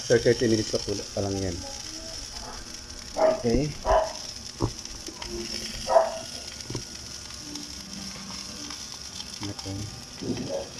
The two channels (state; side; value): identical; both; correlation 1.00